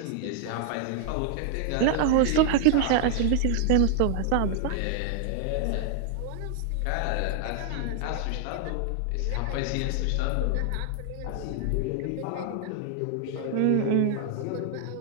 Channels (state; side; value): different; both; correlation 0.00